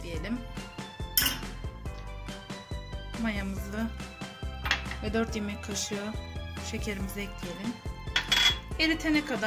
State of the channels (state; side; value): identical; both; correlation 1.00